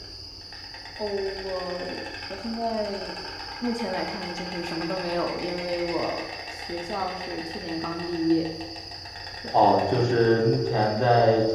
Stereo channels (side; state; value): both; identical; correlation 1.00